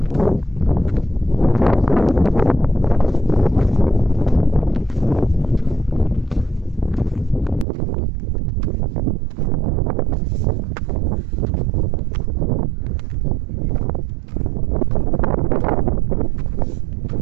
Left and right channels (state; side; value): drops out; left; at 7.7 s